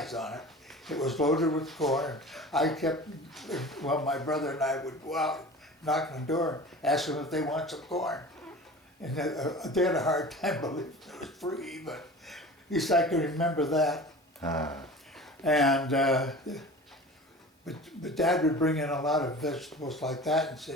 on it. It was loaded with corn. I kept, well, my brother and I would go out, knock on the door, ask them if they want some corn. And they had a hard time believing it was free, but at least I can remember that. And but Dad would bring in a lot of vegetables like that and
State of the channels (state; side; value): normal; both; correlation 0.38